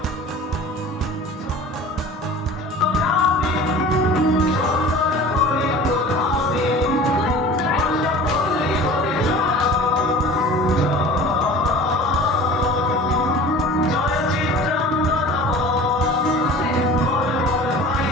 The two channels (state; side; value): normal; both; correlation 0.41